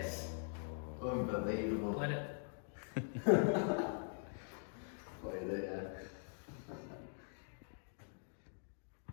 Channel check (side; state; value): right; silent; digital silence